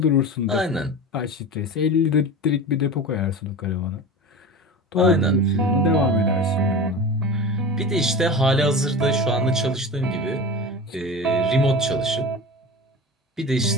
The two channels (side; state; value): both; normal; correlation 0.31